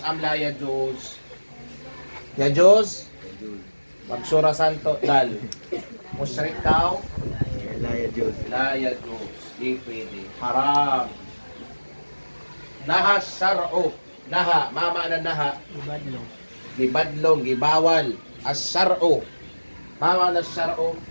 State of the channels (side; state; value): both; inverted; correlation -1.00